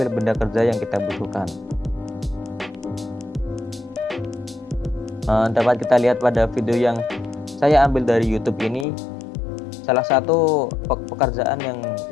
benda kerja yang kita butuhkan. Dapat kita lihat pada video yang saya ambil dari YouTube ini, salah satu pekerjaan yang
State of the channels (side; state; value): right; drops out; at 8.8 s